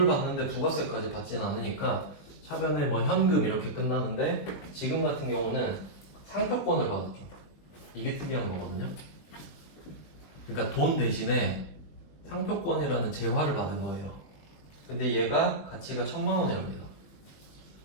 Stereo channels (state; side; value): late; right; 21 ms